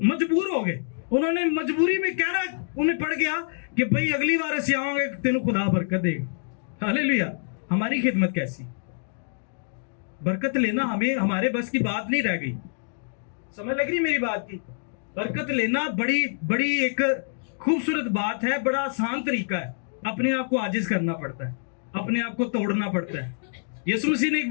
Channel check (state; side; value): silent; right; digital silence